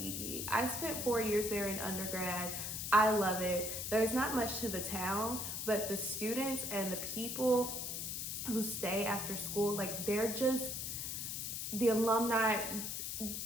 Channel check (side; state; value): left; noise; hiss, 4 dB below the sound